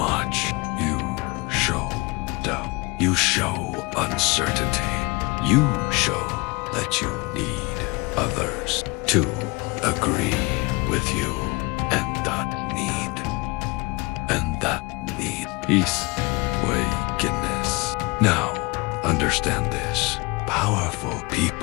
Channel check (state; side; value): quieter; right; 26.0 dB